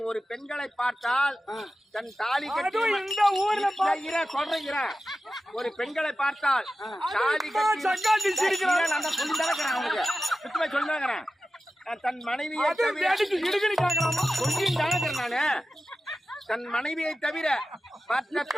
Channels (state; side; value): normal; both; correlation 0.94